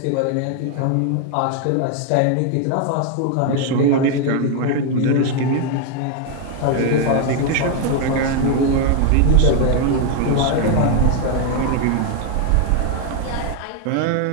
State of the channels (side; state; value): both; different; correlation 0.00